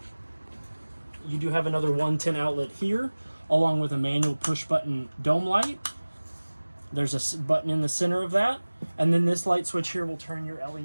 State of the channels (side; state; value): both; inverted; correlation -1.00